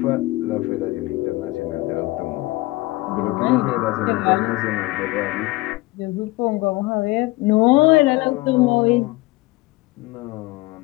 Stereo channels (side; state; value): right; quieter; 21.0 dB